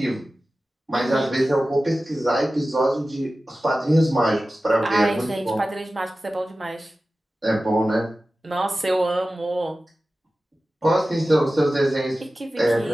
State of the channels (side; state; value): both; normal; correlation 0.95